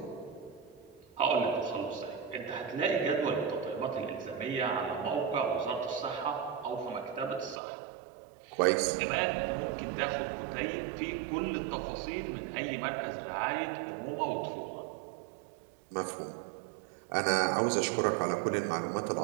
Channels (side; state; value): left; drops out; at 7.6 s